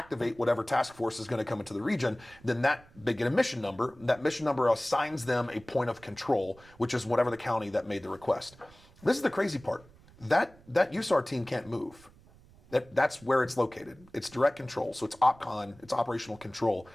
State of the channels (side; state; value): right; noise; rumble, 25 dB below the sound